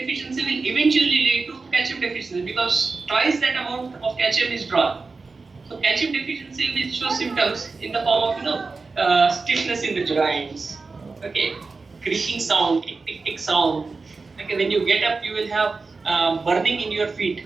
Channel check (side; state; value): left; quieter; 4.1 dB